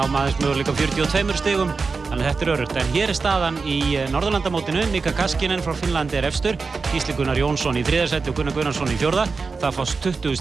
aðeins möguleika 42 stigum, þannig að þetta öruggt. En hér staðan í Norðurlandamótinu. Mika Kaskinen frá Finnlandi efstur, Gísli Gunnar Jónsson í 3. sæti og Gunnar Gunnarsson í 4. Það fást 20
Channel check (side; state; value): left; quieter; 4.5 dB